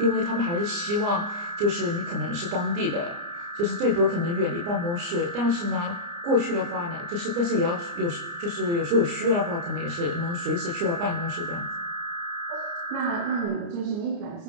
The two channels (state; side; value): late; left; 29 ms